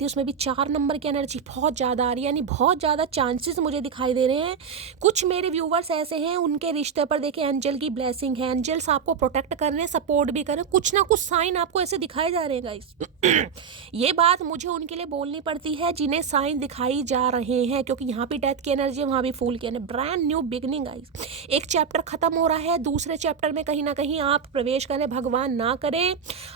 उसमें भी 4 नंबर की एनर्जी बहुत ज़्यादा आ रही है, यानी बहुत ज़्यादा चांसेस मुझे दिखाई दे रहे हैं। कुछ मेरे व्यूवर्स ऐसे हैं, उनके रिश्ते पर देखिए एंजल की ब्लेसिंग है, एंजल्स आपको प्रोटेक्ट कर रहे हैं, सपोर्ट भी कर रहे हैं, कुछ ना कुछ साइन आपको ऐसे दिखाए जा रहे हैं गाइस। ये बात मुझे उनके लिए बोलनी पड़ती है जिन्हें साइन दिखाई जा रहे हैं, क्योंकि यहाँ भी डेथ की एनर्जी है, वहाँ भी फूल की energy. Brand new beginning guys, एक चैप्टर खत्म हो रहा है, दूसरे चैप्टर में कहीं ना कहीं आप प्रवेश करें। भगवान ना करे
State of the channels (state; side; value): quieter; left; 6.7 dB